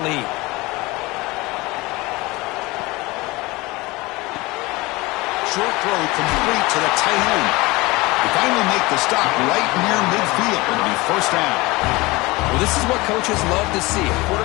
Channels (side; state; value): right; quieter; 22.3 dB